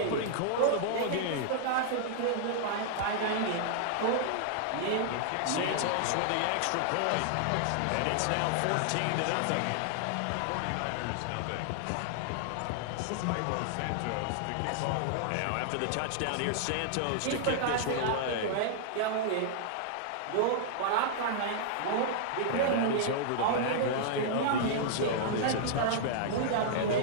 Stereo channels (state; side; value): different; both; correlation -0.01